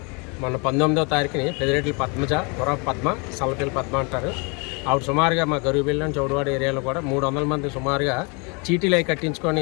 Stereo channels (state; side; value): quieter; right; 32.0 dB